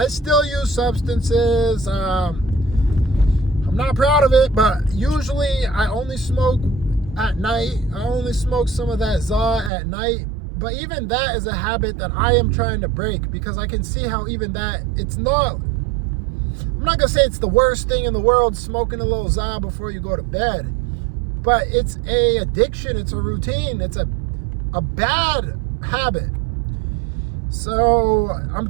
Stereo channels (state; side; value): drops out; left; at 9.7 s